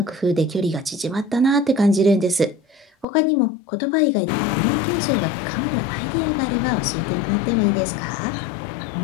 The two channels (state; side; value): drops out; right; at 3.1 s